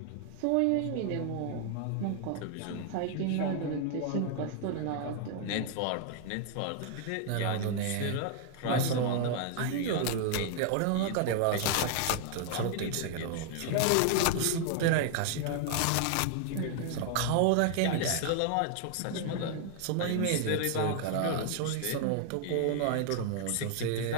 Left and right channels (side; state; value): both; different; correlation 0.00